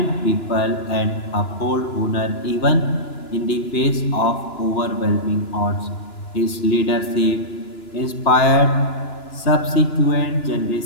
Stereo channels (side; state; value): right; late; 2.9 ms